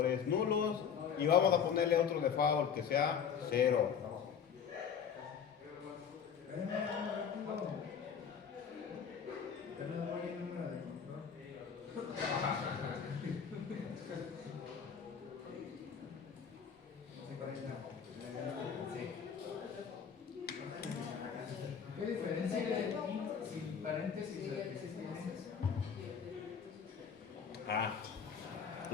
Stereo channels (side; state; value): right; quieter; 7.3 dB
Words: nulos. Y vamos a ponerle otro default que sea 0. ¿Qué diferencia hay sin paréntesis de existencias?